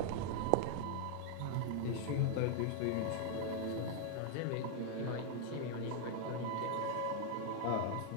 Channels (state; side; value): different; both; correlation 0.00